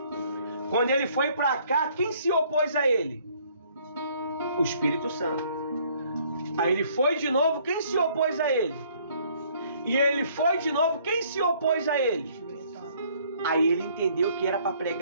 Quando ele foi para cá, quem se opôs a ele? O Espírito Santo. Aí ele foi de novo, quem se opôs a ele? E ele foi de novo, quem se opôs a ele? Aí ele entendeu que era para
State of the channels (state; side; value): inverted; both; correlation -0.61